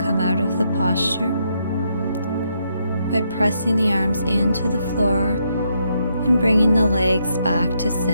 out of the posture by pressing the arms into the floor and bringing the legs back to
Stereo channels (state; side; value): inverted; both; correlation -0.77